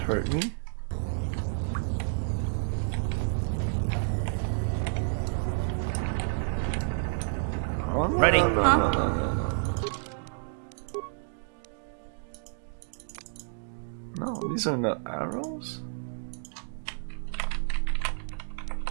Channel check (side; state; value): left; silent; digital silence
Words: hurt me? Oh, no, Ready? No, these are not arrows?